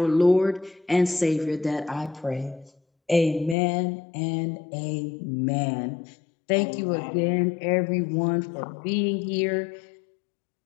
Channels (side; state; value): right; drops out; at 3.6 s